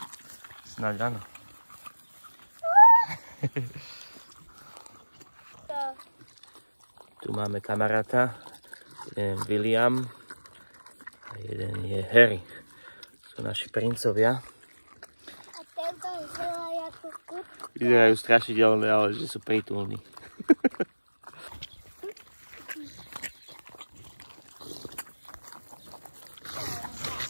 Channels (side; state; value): both; inverted; correlation -1.00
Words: Snáď áno. Tu máme kamaráta. Jeden je William a jeden je Harry. Sú naši princovia. A tento vyzerá ako kut. Vyzerajú strašidelné, ale že sú prítulní.